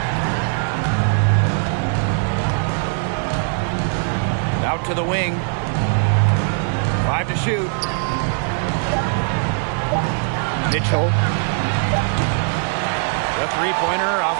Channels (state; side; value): silent; left; 56 dB below the other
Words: Out to the wing. 5 to shoot. Mitchell. The three-pointer